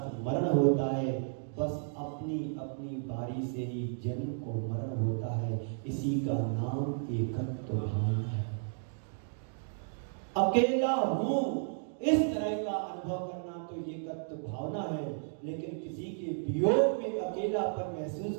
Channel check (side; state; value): left; silent; digital silence